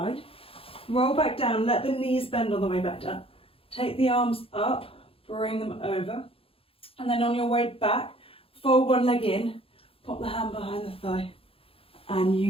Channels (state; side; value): late; right; 0.27 ms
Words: roll back down, let the knees bend on the way back down, take the arms up, bring them over, and then on your way back, fold one leg in, pop the hand behind the thigh, and